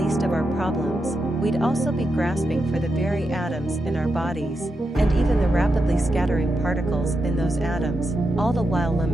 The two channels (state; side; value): normal; both; correlation 0.86